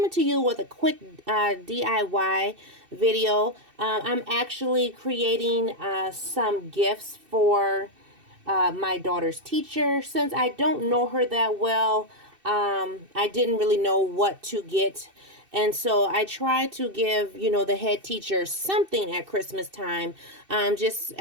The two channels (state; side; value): late; left; 2.6 ms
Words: to you with a quick DIY video. I'm actually creating some gifts for my daughter's teacher. Since I don't know her that well, I didn't really know what to get. And so I try to give, the head teacher something at Christmas time, just